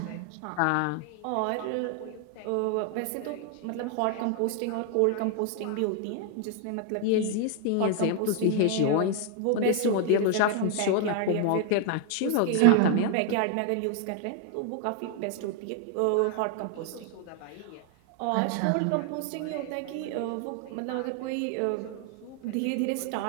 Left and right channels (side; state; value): both; different; correlation 0.00